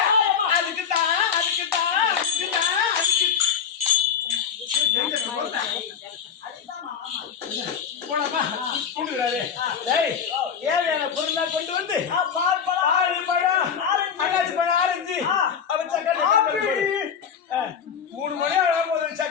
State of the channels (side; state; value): right; quieter; 7.2 dB